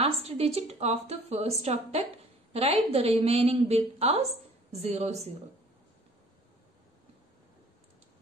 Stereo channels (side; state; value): both; normal; correlation 0.53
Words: digit of the first octet. Write the remaining bit as 00.